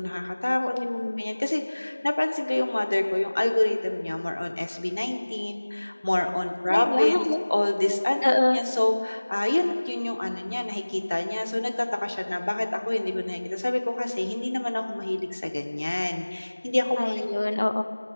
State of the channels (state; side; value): inverted; both; correlation -1.00